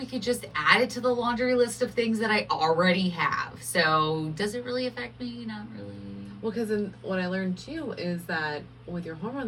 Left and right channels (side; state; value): both; identical; correlation 1.00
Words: could just add it to the laundry list of things that I already have. So does it really affect me? Not really. Well, because what I learned too is that with your